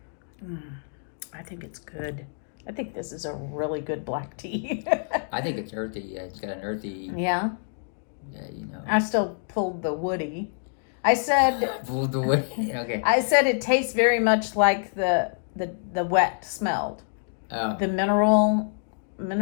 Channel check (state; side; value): silent; right; digital silence